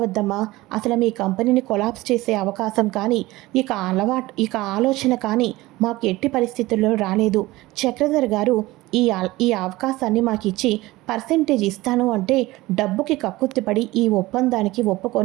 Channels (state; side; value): quieter; left; 19.1 dB